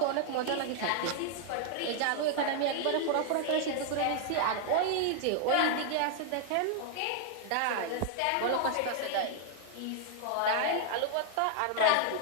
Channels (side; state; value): both; different; correlation 0.00